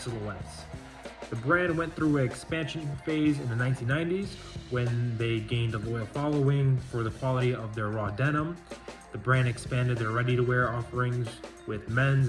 The brand went through an expansion phase in the 1990s when they gained a loyal following for the quality of their raw denim. The brand expanded their ready-to-wear offerings with men's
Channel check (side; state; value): both; identical; correlation 1.00